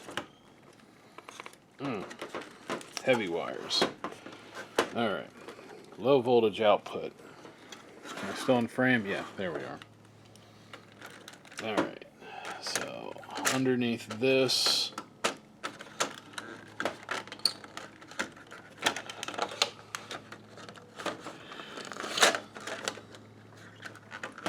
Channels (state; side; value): identical; both; correlation 1.00